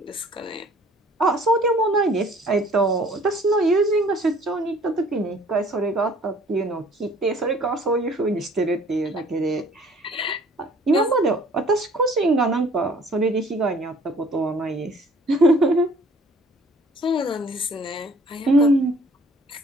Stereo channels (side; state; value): both; normal; correlation 0.55